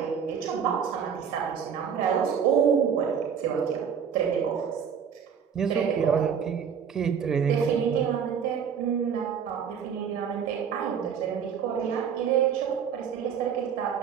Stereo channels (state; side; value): quieter; left; 7.4 dB